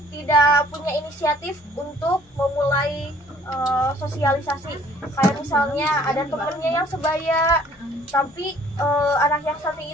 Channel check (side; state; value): both; normal; correlation 0.57